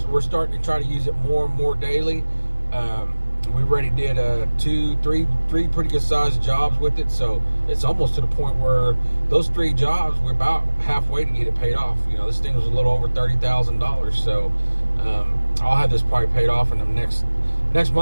starting to try to use it more and more daily. We already did three pretty good sized jobs with it, so it's almost to the point where those 3 jobs, we're about halfway to get it paid off. You know, this thing was a little over $30,000, so I'll have this probably paid off in the next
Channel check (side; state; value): both; inverted; correlation -1.00